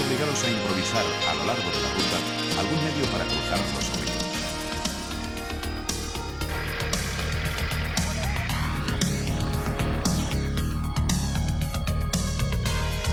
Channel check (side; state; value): both; identical; correlation 1.00